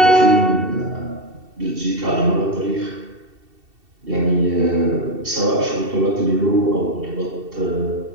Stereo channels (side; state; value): left; late; 2.7 ms